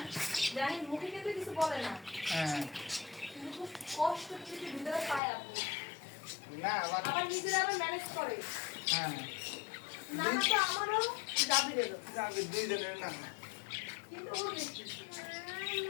জানি মুখে কিন্তু কিছু বলে না, হ্যাঁ কিন্তু খুব কষ্ট কিছু ভিতরে পায় আপু। না আবার নিজেরা আবার ম্যানেজ করে। হ্যাঁ না না তো আমারও জাবিরেরও, যাবে দুইজনের না কিন্তু ও বেশি।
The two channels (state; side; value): drops out; right; at 5.2 s